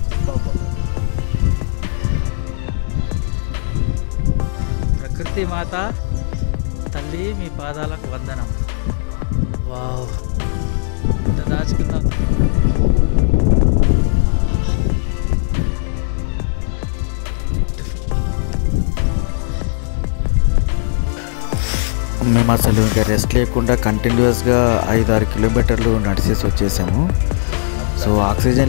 బాబా. ప్రకృతి మాత తల్లి మీ పాదాలకు వందనం. వావ్, ఇంత దాచుకున్నాం. మేము అసలు ఇంకా రెస్ట్ లేకుండా కంటిన్యూస్గా 5-6 కిలోమీటర్లు నడిచేసి వచ్చేసాము. సో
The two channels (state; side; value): silent; right; digital silence